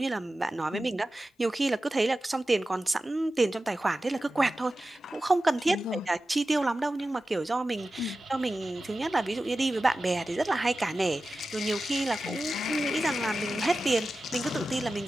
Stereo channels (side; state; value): both; normal; correlation 0.94